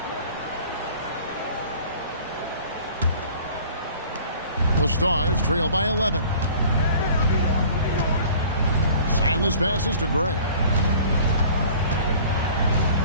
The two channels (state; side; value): inverted; both; correlation -0.47